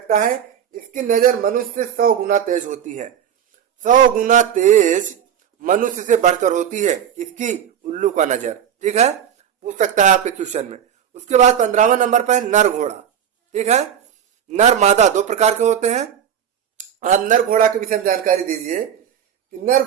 है। इसकी नजर मनुष्य से 100 गुना तेज होती है। 100 गुना तेज मनुष्य से बढ़कर होती है। इसकी? उल्लू का नजर। ठीक है, पूछ सकता है आपके क्वेश्चन में। उसके बाद 15वां नंबर पर है नर घोड़ा। ठीक है, नर मादा 2 प्रकार के होते हैं। आप नर घोड़ा के विषय में जानकारी दीजिए कि नर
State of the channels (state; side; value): quieter; left; 8.9 dB